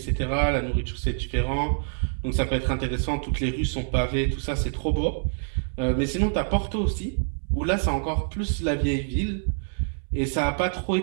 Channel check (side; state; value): left; silent; digital silence